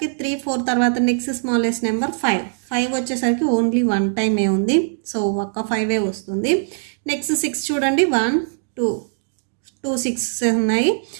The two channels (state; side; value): silent; left; digital silence